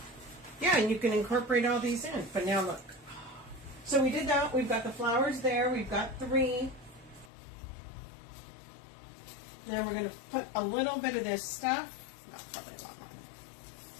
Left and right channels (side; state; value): right; drops out; at 7.3 s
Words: Yeah, and you can incorporate all these in. But now look. So we did that. We've got the flowers there. We've got 3. Now we're going to put a little bit of this stuff. No, probably a lot